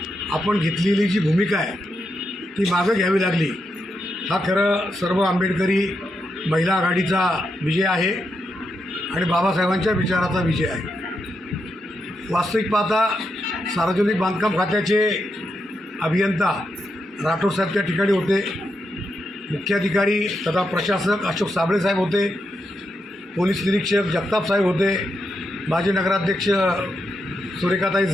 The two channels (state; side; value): normal; both; correlation 0.84